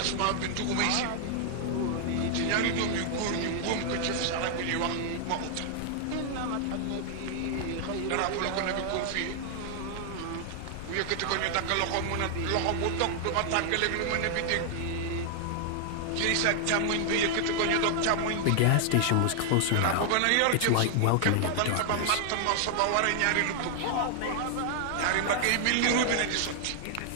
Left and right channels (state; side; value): different; both; correlation 0.00